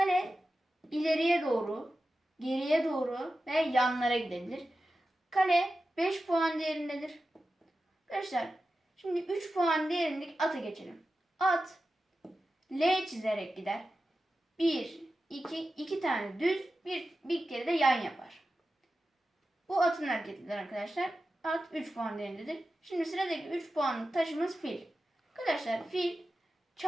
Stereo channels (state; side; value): normal; both; correlation 0.93